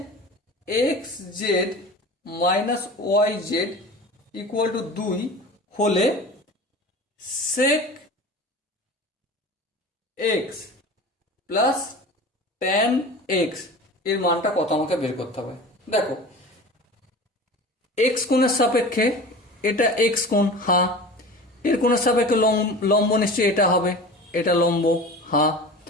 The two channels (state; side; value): normal; both; correlation 0.36